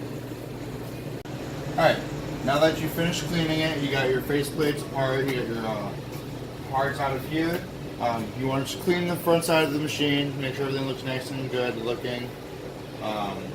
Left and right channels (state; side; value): identical; both; correlation 1.00